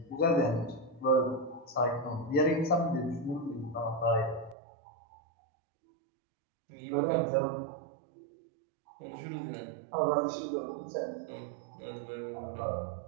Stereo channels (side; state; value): left; drops out; at 4.5 s